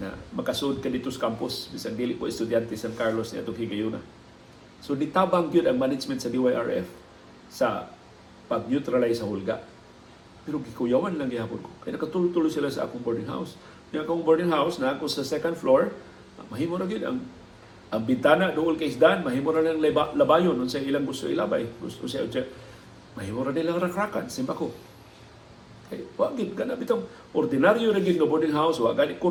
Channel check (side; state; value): both; identical; correlation 1.00